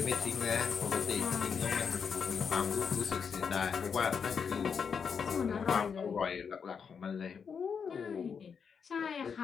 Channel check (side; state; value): right; quieter; 6.4 dB